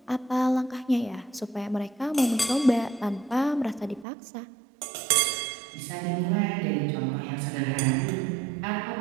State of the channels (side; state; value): left; drops out; at 4.0 s